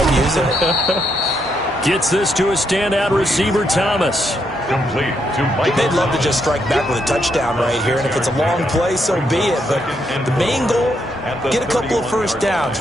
using it. Gets this to a standout receiver, Thomas. Complete to Mike. They'd love to just strike back with a touchdown right here, and if it's a long play, so be it. But the main goal, get a couple of 1st downs,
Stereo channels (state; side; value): normal; both; correlation 0.77